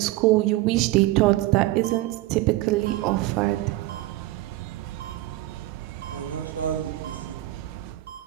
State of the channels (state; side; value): quieter; left; 17.2 dB